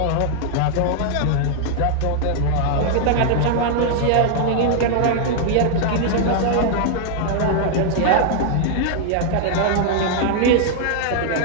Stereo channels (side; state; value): both; different; correlation 0.00